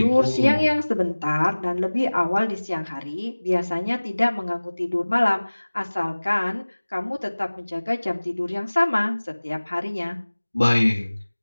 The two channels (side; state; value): both; inverted; correlation -1.00